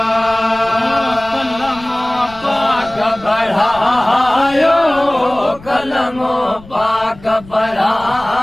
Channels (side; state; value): left; noise; rumble, 21 dB below the sound